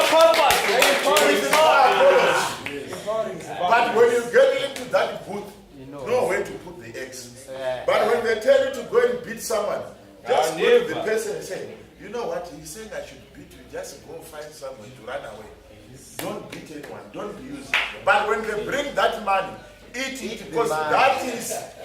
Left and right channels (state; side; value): identical; both; correlation 1.00